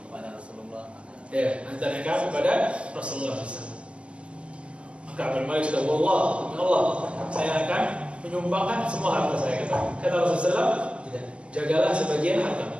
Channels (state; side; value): late; left; 0.060 ms